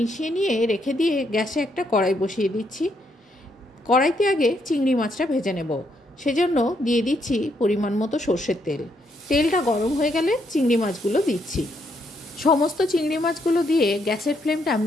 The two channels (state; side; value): normal; both; correlation 0.75